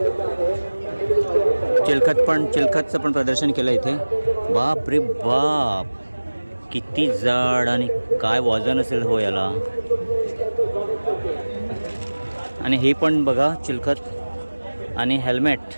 चिलखतचं पण प्रदर्शन केलं इथे. बाप रे बाप, किती जाड आणि काय वजन असेल हो याला. आणि हे पण बघा चिलखत आणि हेल्मेट,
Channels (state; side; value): inverted; both; correlation -1.00